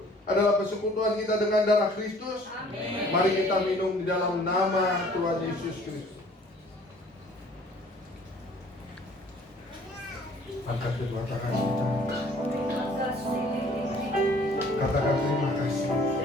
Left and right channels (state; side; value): normal; both; correlation 0.54